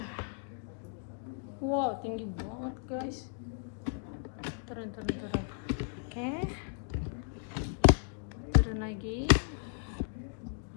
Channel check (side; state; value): right; quieter; 37.5 dB